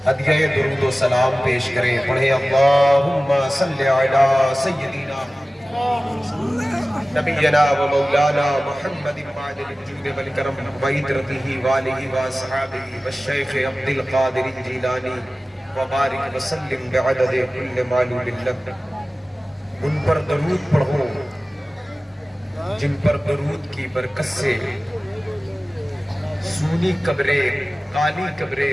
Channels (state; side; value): normal; both; correlation 0.97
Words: ہدیہ درود و سلام پیش کریں پڑھیں اللہم صلی علی سیدنا نبینا و مولانا محمد معدن الجود والکرم وعطرتہ والہ واصحابہ والشیخ عبد القادر الجیلانی وبارک وسلم بعدد کل معلوم لک ان پر درود پڑھو جن پر درود کی برکت سے سونی قبریں کالی قبریں